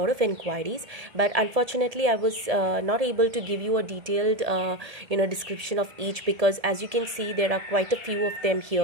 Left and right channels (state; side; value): late; left; 1.7 ms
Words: of inquiries, but unfortunately I was not able to give you a detailed description of each, because as you can see there are quite a few of them